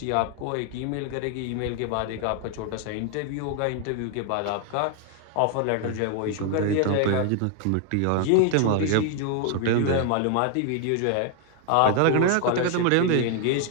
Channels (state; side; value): different; both; correlation 0.00